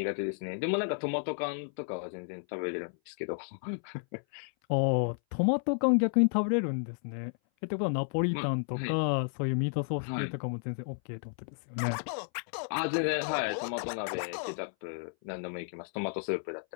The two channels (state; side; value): silent; right; 56 dB below the other